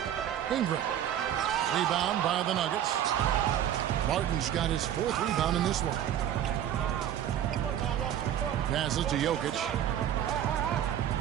Ingram. Rebound by the Nuggets. Martin's got his 4th rebound in this one. Passes to Jokic.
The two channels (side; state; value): left; quieter; 10.6 dB